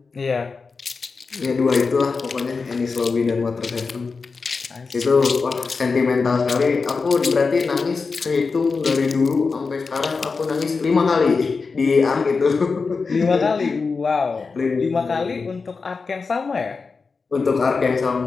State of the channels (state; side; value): quieter; right; 4.6 dB